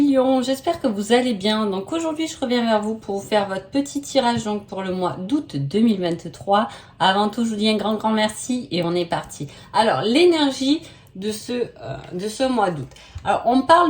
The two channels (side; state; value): both; identical; correlation 1.00